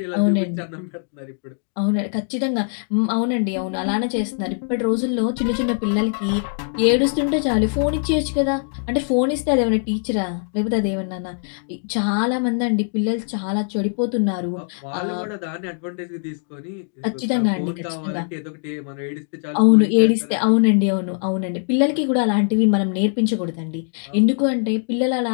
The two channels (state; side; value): silent; right; digital silence